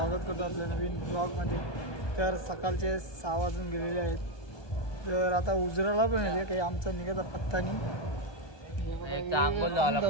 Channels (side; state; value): right; late; 1.2 ms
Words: करतो आपल्या नवीन ब्लॉगमध्ये. तर सकाळचे 6 वाजून गेलेले आहेत. तर आता उजराला पण येते काही आमचा निघायचा पत्ता नाही. आंघोळ झाला,